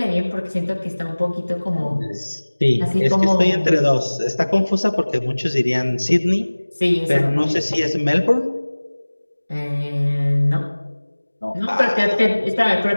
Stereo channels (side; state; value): both; inverted; correlation -1.00